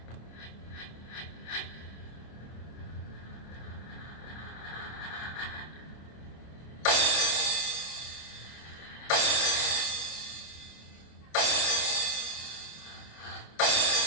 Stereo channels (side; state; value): right; late; 26 ms